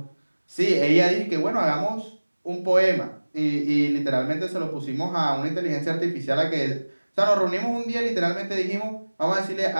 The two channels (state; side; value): inverted; both; correlation -1.00